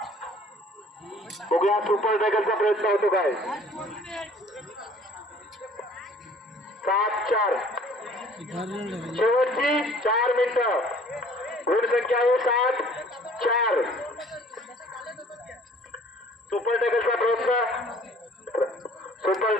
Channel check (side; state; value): both; normal; correlation 0.53